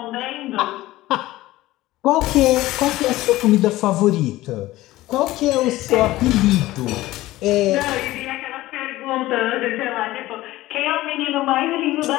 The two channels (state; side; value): quieter; right; 17.1 dB